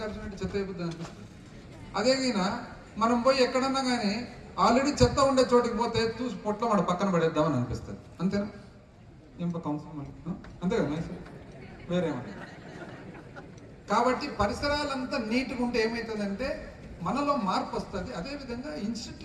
చెత్త ఏబుద్ది అనిపిస్తుంది. అదేగినా మనం పోయి ఎక్కడన్నా కానీ ఆల్రెడీ చెత్త ఉండే చోటికి పోతే చూసి పొట్ల వాడు పక్కన పడేద్దామని అనిపిస్తుంది. అంతేనా? ఏం కౌన్సిల్ అంతే కదా, వేరేమన్నా. కాబట్టి పరిసరాలంతా నీట్గా ఉంటే ఏమవుతుందంటే మనలో మార్పు వస్తుంది. అదేవిధంగా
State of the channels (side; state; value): both; identical; correlation 1.00